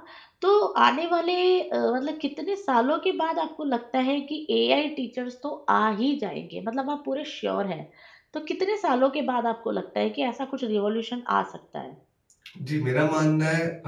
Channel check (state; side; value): identical; both; correlation 1.00